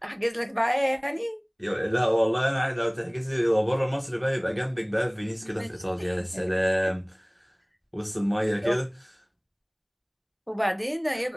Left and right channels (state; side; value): identical; both; correlation 1.00